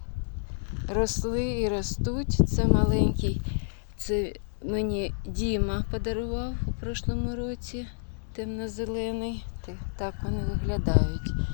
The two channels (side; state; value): right; silent; digital silence